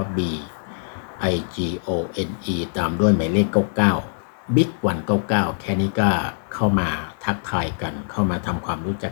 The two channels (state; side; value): silent; right; digital silence